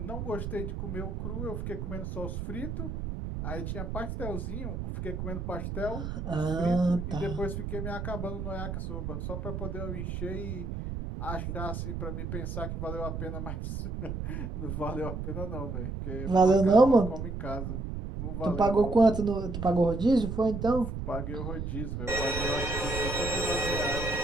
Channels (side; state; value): right; noise; rumble, 5 dB below the sound